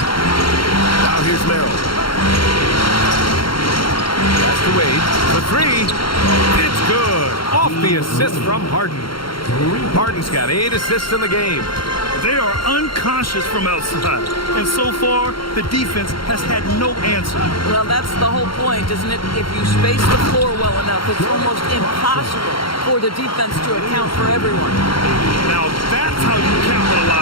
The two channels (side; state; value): right; late; 0.73 ms